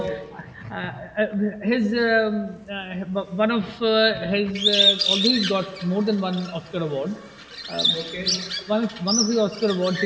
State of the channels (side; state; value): both; identical; correlation 1.00